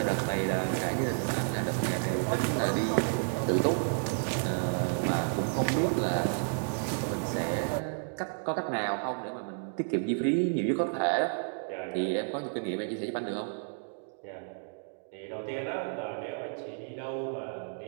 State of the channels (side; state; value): left; silent; digital silence